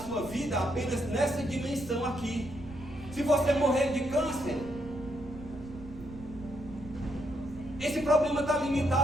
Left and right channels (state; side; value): noise; right; rumble, 17 dB below the sound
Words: vida apenas nessa dimensão aqui. Se você morrer de câncer, esse problema está